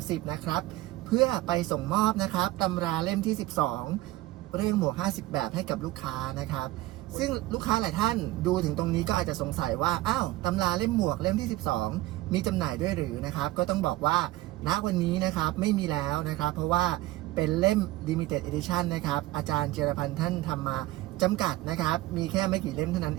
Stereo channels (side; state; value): left; quieter; 17.7 dB